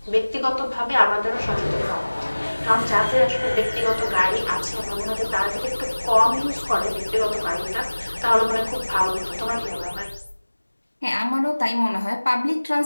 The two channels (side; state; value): both; inverted; correlation -1.00